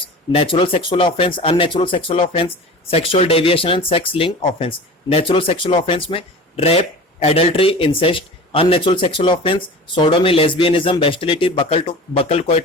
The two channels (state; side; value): normal; both; correlation 0.36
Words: natural sexual offense, unnatural sexual offense, sexual deviation and sex link offense. Natural sexual offense में rape, adultery, incest. Unnatural sexual offense sodomy, lesbianism, bestiality, buccal